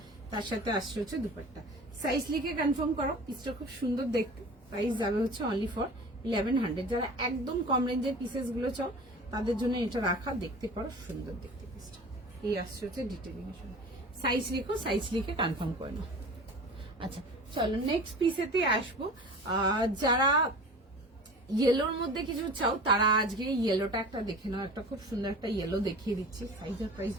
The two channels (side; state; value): both; normal; correlation 0.39